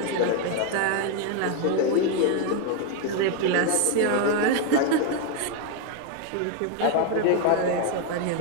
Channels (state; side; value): different; both; correlation 0.01